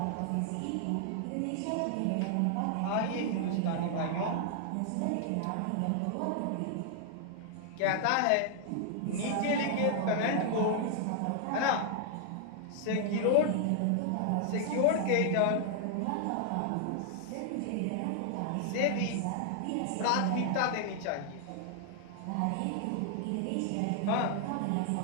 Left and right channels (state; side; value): different; both; correlation 0.00